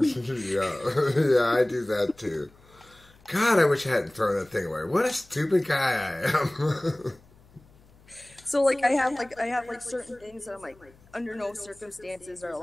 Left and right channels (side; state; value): left; noise; hum, 28 dB below the sound